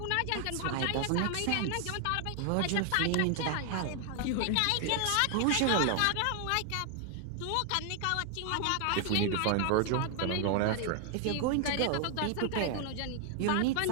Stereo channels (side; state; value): both; different; correlation 0.00